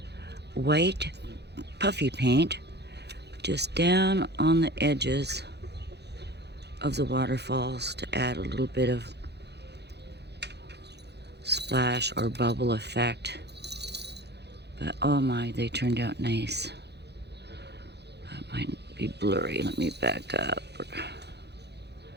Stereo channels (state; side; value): late; left; 0.49 ms